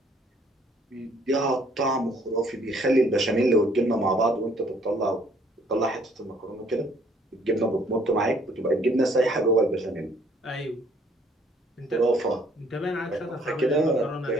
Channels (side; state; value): both; normal; correlation 0.62